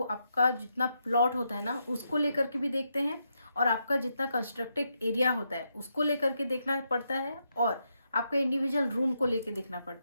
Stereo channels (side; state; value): both; inverted; correlation -0.81